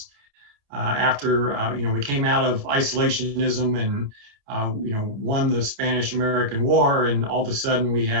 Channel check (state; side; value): late; left; 29 ms